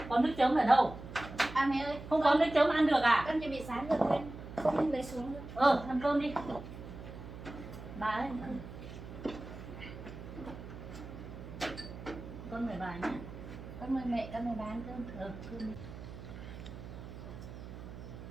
Con nước chấm ở đâu? À mẹ ơi, Không có nước chấm ăn được à? con chuẩn bị sáng rồi quên không lấy xuống được. Ăn cơm đi. Bà ơi, ăn cơm. Con mời bà nhé. Con mời mẹ, con mời ba ăn cơm. Cơm đi.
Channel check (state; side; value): noise; right; hum, 12 dB below the sound